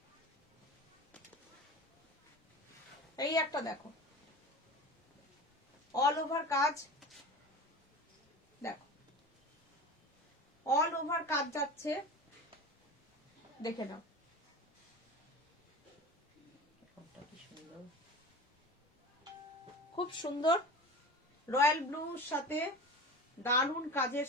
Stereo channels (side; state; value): both; normal; correlation 0.33